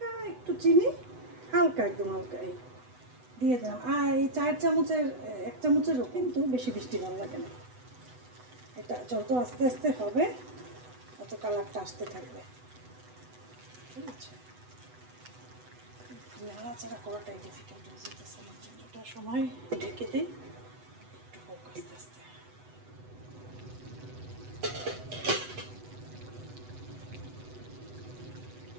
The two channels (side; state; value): left; late; 8.0 ms